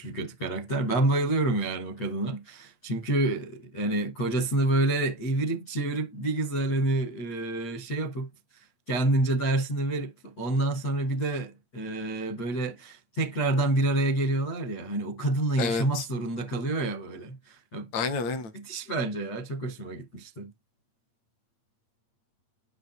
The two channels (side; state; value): right; late; 8.7 ms